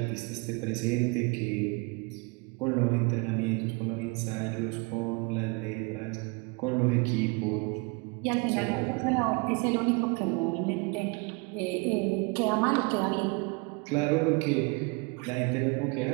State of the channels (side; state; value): left; quieter; 29.5 dB